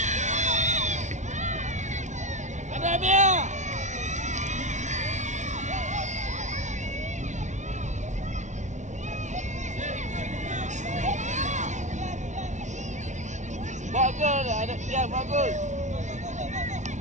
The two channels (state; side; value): late; left; 0.35 ms